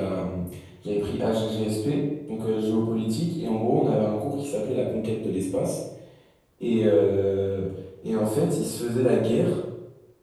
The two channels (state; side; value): identical; both; correlation 1.00